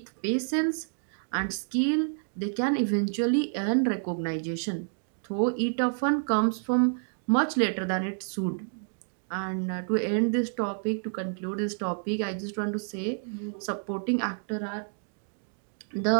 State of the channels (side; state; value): left; silent; digital silence